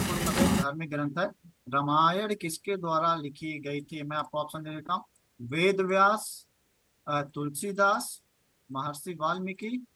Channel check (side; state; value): both; identical; correlation 1.00